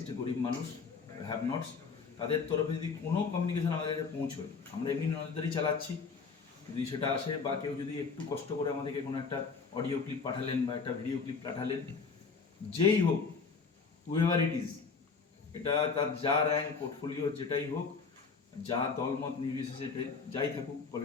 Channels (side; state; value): right; quieter; 5.0 dB